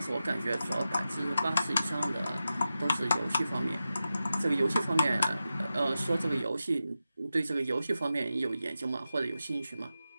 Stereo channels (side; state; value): both; inverted; correlation -0.92